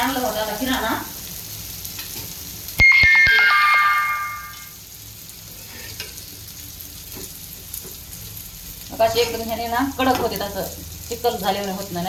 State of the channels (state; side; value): identical; both; correlation 1.00